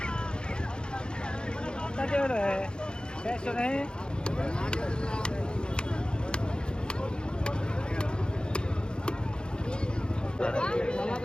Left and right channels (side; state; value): right; late; 0.049 ms